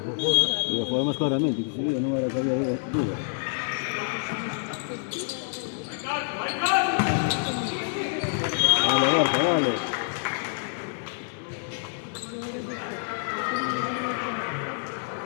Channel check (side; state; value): right; silent; digital silence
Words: Lo podemos claramente, que si no era que había duda. Vale, Borja, vale.